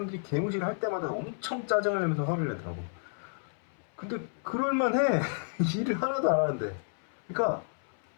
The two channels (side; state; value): right; silent; 57 dB below the other